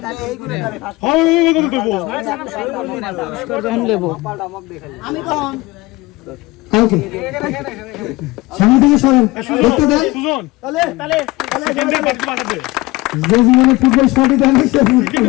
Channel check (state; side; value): quieter; right; 21.4 dB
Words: তাহলে এই গুলো হয় দেবো পুরস্কার যখন নেব আমি কোন কালকে সামনে থেকে সরেন দেখতে দেন সুজন তাহলে সেকেন্ডের বাকি বাকি দে যে জীবনে ফুটবল শট দেন সে